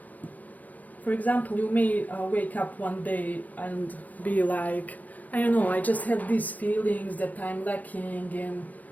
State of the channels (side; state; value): right; late; 0.079 ms